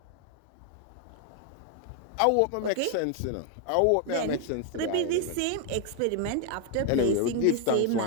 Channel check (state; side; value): different; both; correlation 0.00